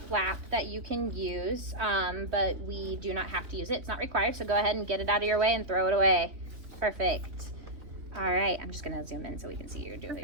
flap that you can use, but we do not have to use it. It's not required, so go ahead and get it out of your way and throw it away. Perfect. All right, I'm just gonna zoom in so we can see you're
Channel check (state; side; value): late; left; 3.4 ms